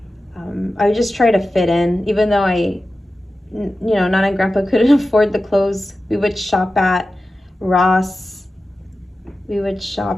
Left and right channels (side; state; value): both; normal; correlation 0.94